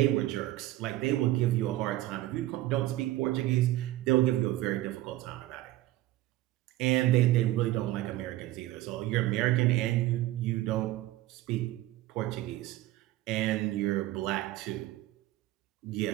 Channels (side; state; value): left; quieter; 16.0 dB